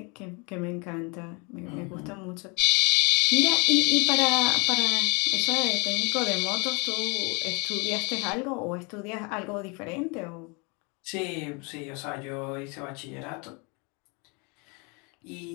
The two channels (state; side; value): quieter; right; 31.2 dB